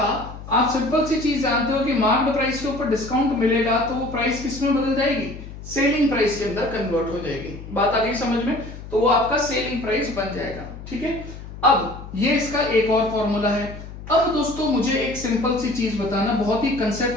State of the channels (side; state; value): left; noise; hum, 13 dB below the sound